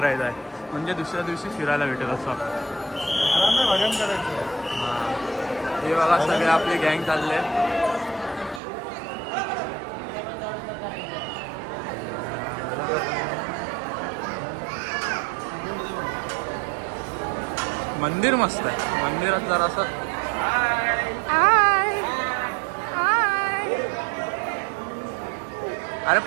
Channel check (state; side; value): drops out; left; at 8.6 s